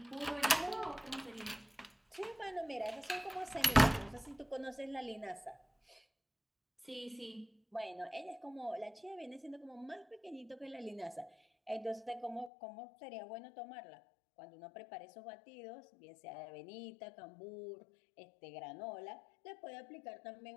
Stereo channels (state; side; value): drops out; right; at 12.5 s